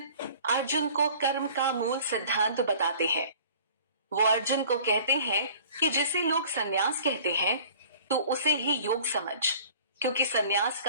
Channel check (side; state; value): both; inverted; correlation -0.48